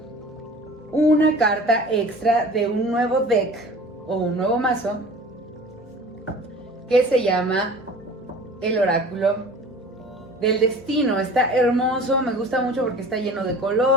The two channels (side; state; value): both; normal; correlation 0.42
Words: una carta extra de un nuevo deck o un nuevo mazo que se llama el Oráculo del Destino. Está hermoso, me gusta mucho porque está lleno de